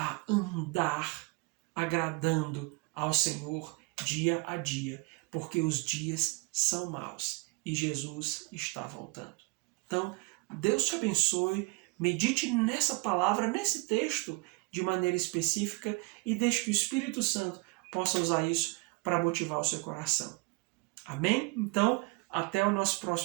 andar agradando ao Senhor dia a dia, porque os dias são maus e Jesus está voltando. Então, Deus te abençoe, medite nessa palavra, nesse texto de maneira específica e deixe que o Espírito Santo possa usar isso para motivar o seu coração. Amém? Então, até o nosso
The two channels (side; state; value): left; quieter; 27.7 dB